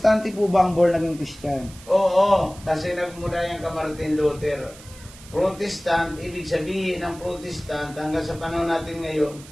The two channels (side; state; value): right; noise; hiss, 20 dB below the sound